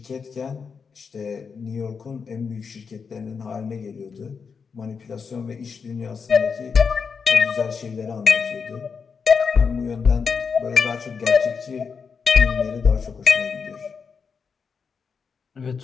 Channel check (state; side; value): quieter; right; 5.8 dB